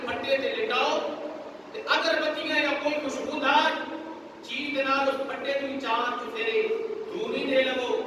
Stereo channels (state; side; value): identical; both; correlation 1.00